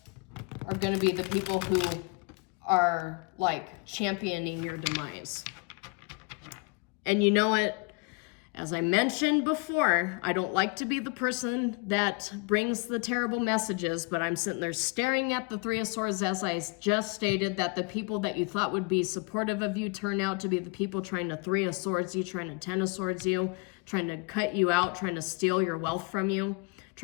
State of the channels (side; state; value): right; quieter; 30.7 dB